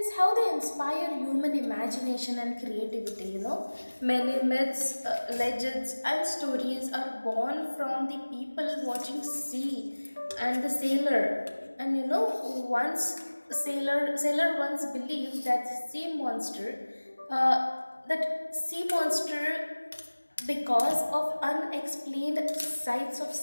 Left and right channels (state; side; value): inverted; both; correlation -1.00